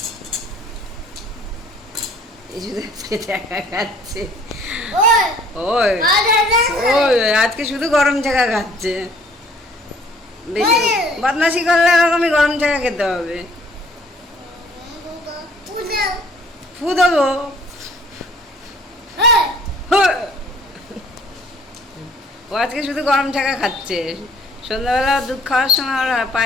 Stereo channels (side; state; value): both; normal; correlation 0.57